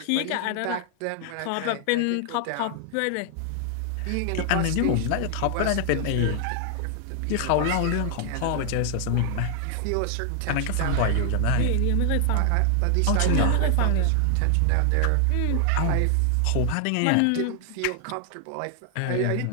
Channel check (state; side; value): different; both; correlation 0.00